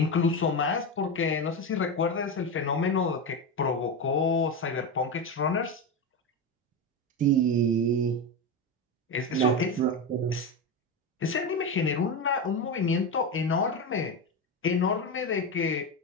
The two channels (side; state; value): both; normal; correlation 0.16